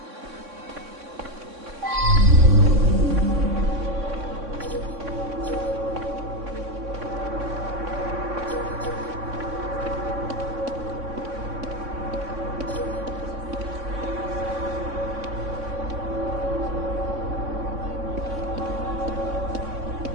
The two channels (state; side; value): late; left; 3.6 ms